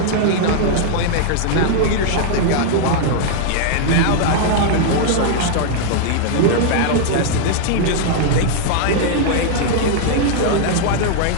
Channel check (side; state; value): both; different; correlation -0.01